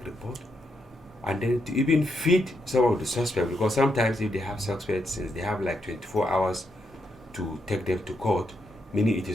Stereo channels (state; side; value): normal; both; correlation 0.80